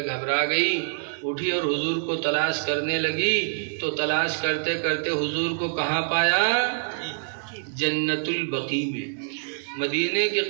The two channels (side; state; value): left; silent; 60 dB below the other